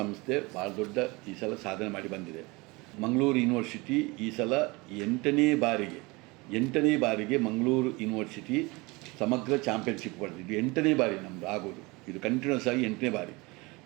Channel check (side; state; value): left; quieter; 24.7 dB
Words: ಸಂಸ್ಥೆ ಭಾಳ ದೊಡ್ಡ ಈ ಸಲ ಸಾಧನೆ ಮಾಡಿ ಬಂದಿದೆ. ಮಂಗಳೂರು ಯೂನಿವರ್ಸಿಟಿ ಈ ಸಲ ಎಂಟನೇ ಬಾರಿಗೆ ಮಂಗಳೂರು ಯೂನಿವರ್ಸಿಟಿ ಸಮಗ್ರ ಚಾಂಪಿಯನ್ಶಿಪ್ ಪಡೆದಿದ್ದು 8ನೇ ಬಾರಿ ನಮ್ಮದು ಆಗೋದು. ಇದು ಕಂಟಿನ್ಯೂಸ್ ಆಗಿ 8ನೇ ಬಾರಿ.